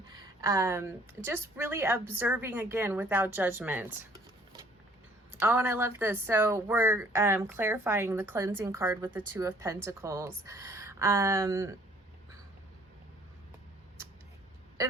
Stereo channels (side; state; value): both; normal; correlation 0.58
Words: Just really observing, again, without judgment. Oh, and I love this. So we're clarifying the cleansing card with the Two of Pentacles. And